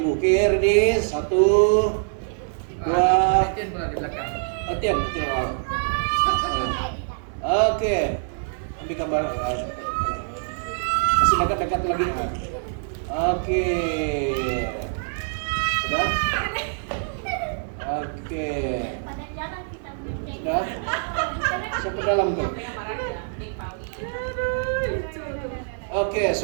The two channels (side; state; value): left; silent; digital silence